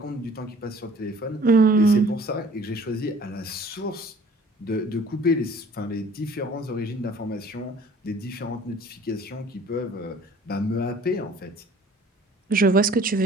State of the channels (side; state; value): both; normal; correlation 0.52